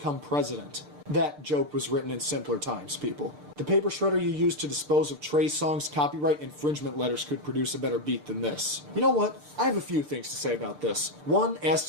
president. That joke was written in simpler times, people. The paper shredder you used to dispose of Trey Songz's copyright infringement letters could produce a better beat than this. You know what? I have a few things to say about this. One, as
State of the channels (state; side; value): late; left; 6.7 ms